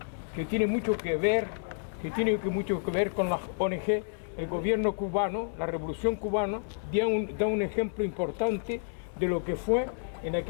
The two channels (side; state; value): right; silent; 58 dB below the other